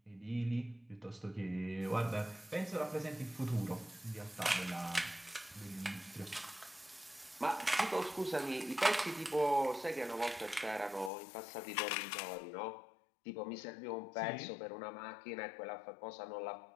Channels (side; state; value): right; drops out; at 11.1 s